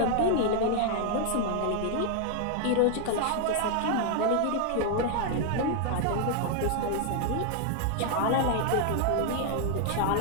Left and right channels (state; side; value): different; both; correlation 0.00